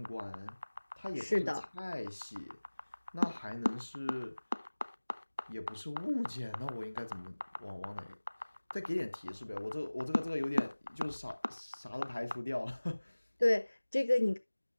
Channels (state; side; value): inverted; both; correlation -1.00